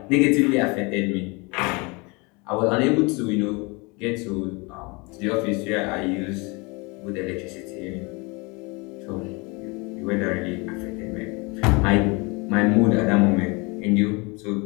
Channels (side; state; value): right; quieter; 28.0 dB